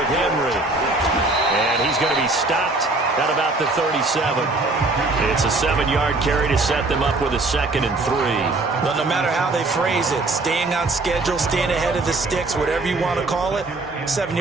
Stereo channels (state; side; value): quieter; left; 3.2 dB